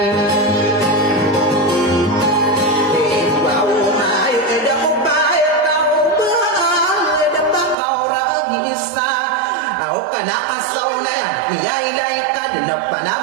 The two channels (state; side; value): drops out; left; at 7.8 s